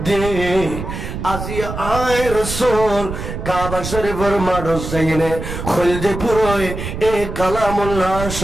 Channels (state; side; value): noise; right; rumble, 7 dB below the sound